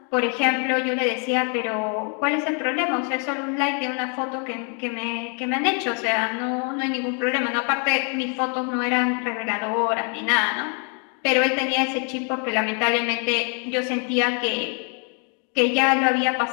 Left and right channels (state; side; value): quieter; right; 39.4 dB